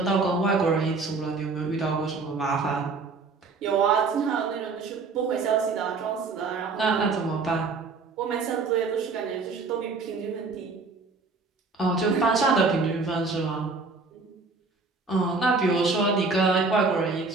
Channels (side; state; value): left; quieter; 4.2 dB